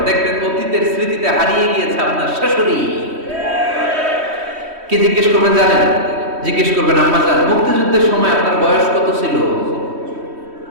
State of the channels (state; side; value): late; left; 3.1 ms